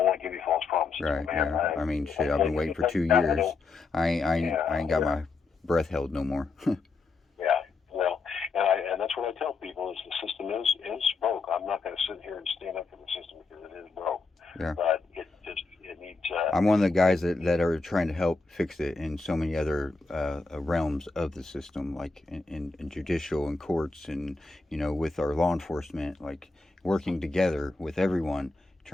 want to give you false promises. Right. Man. Yeah. I've been waiting for 2 years. I ain't got my breath held no more. Yeah. Well, and that's what I tell people is the system is broke. I'm not going to sit here and stand up for the system because it is broke. Yeah. But it needs. I'm one of the guys that are trying to help fix it in so many other realms of the system, like in judicial and courts, and with our law enforcement, like working together with everyone,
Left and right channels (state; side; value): quieter; right; 3.9 dB